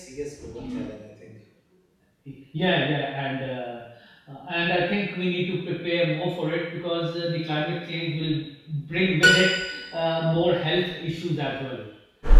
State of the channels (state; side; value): identical; both; correlation 1.00